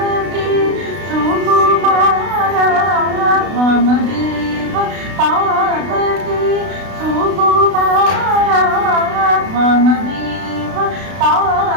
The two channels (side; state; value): left; late; 32 ms